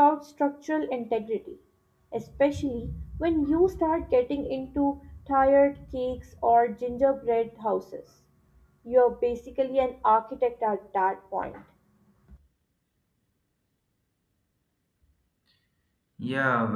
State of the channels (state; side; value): identical; both; correlation 1.00